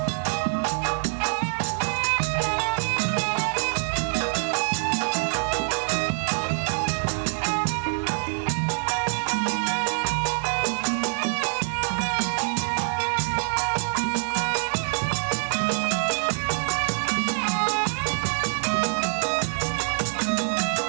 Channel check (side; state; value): left; silent; 62 dB below the other